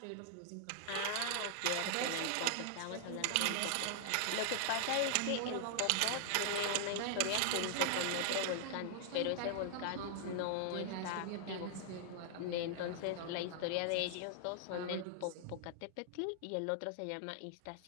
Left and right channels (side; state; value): both; different; correlation -0.01